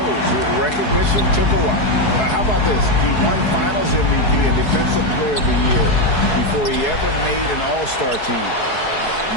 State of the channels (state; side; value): late; right; 4.7 ms